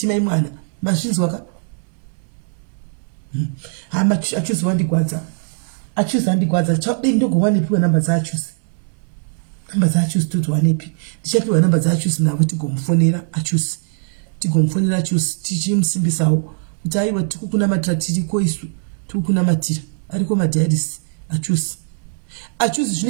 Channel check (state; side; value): silent; left; 66 dB below the other